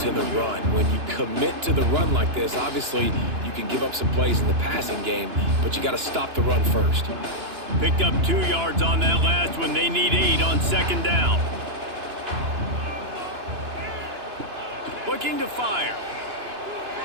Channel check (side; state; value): left; late; 2.9 ms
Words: the run. When you commit to the run like this, obviously you can give up some plays in the passing game, but you got to stop the run first. Picked up 2 yards on that last one. They need 8 on 2nd down. Looking to fire.